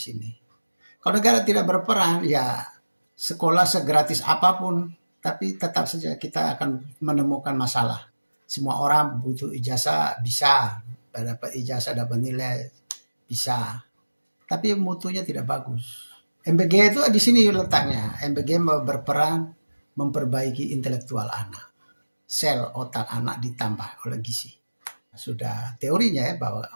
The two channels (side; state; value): both; inverted; correlation -1.00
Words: sini. Kalau negara tidak berperan, ya sekolah segratis apapun, tapi tetap saja kita akan menemukan masalah. Semua orang butuh ijazah, bisa. Dapat ijazah, dapat nilai, bisa. Tapi mutunya tidak bagus. MBG itu di sini letaknya. MBG berperan memperbaiki intelektual anak. Sel otak anak ditambah oleh gizi. Sudah teorinya ya bahwa